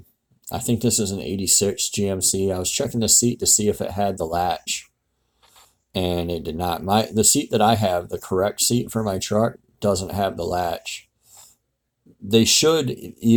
think this is an 86 GMC. I was checking the seat to see if it had the latch, and it did not. The seat that I have, the correct seat for my truck, doesn't have the latch. They should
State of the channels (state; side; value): identical; both; correlation 1.00